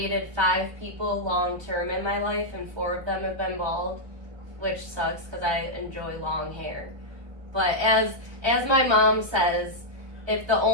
5 people long term in my life and 4 of them have been bald, which sucks because I enjoy long hair. But as my mom says, if the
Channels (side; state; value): left; late; 1.4 ms